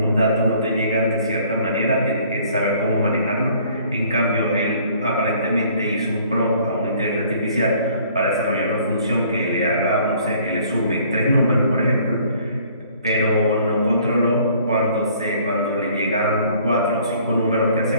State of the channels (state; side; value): inverted; both; correlation -0.57